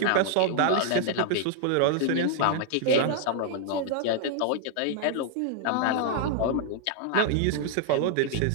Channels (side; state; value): both; different; correlation -0.01